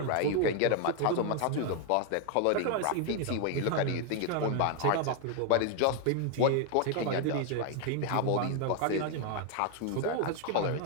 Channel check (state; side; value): different; both; correlation 0.01